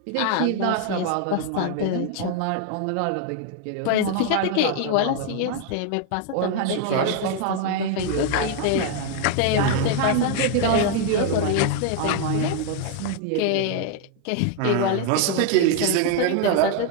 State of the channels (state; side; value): different; both; correlation 0.01